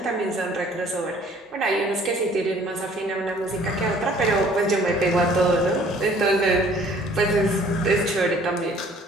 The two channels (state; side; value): normal; both; correlation 0.55